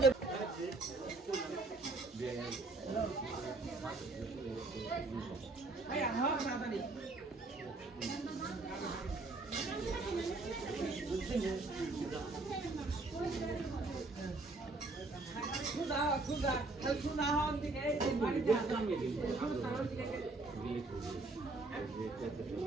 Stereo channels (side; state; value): left; quieter; 3.3 dB